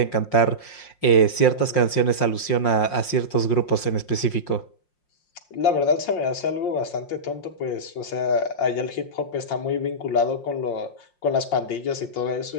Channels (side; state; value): right; late; 5.6 ms